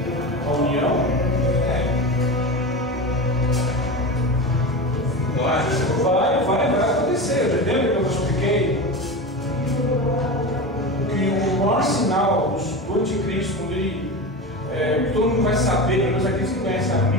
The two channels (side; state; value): both; normal; correlation 0.25